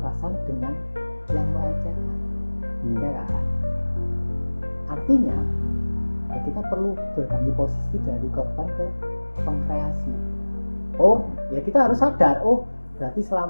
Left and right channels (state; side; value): inverted; both; correlation -1.00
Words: dengan yang melecehkan. Ya kan? Artinya, ya kita perlu berganti posisi dari korban ke pengkreasi. Oh, ya kita harus sadar, oh berarti